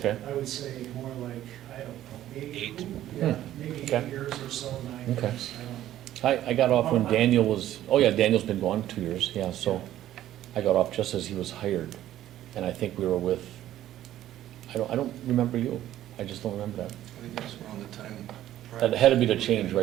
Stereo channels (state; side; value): quieter; left; 12.9 dB